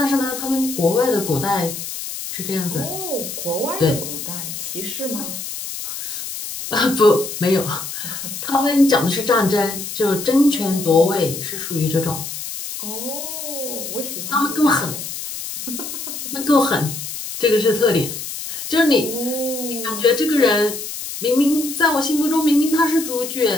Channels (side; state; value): left; noise; hiss, 7 dB below the sound